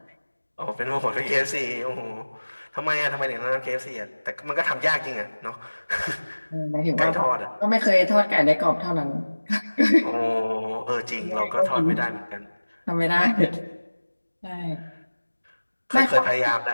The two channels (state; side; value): inverted; both; correlation -1.00